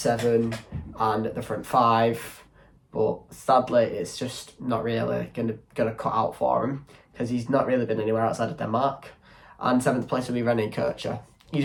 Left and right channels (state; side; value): identical; both; correlation 1.00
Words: and the front 5, but sadly it's just not really gonna cut out for him because he's not really been anywhere outside of Denmark. And 7th place will be René Kircher. He's